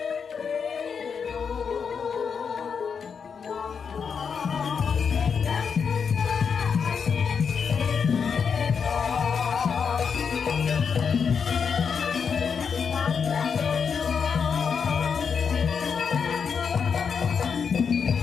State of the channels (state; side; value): quieter; right; 6.3 dB